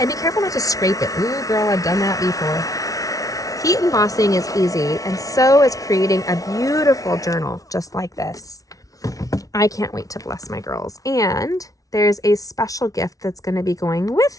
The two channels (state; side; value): late; right; 0.17 ms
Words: be careful not to scrape it. Ooh, girl, I've done that before. Heat embossing is easy, and so is creating a beautiful journal just like this. I can't wait to bless my girls. And there's a special gift that's going to be going